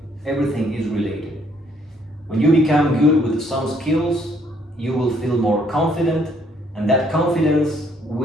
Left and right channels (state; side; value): normal; both; correlation 0.66